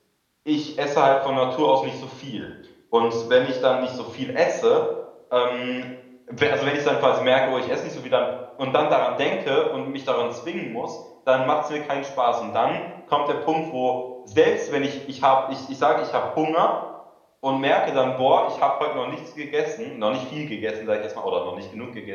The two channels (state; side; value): identical; both; correlation 1.00